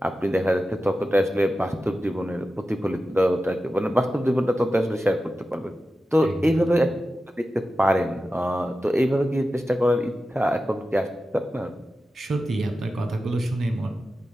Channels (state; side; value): normal; both; correlation 0.93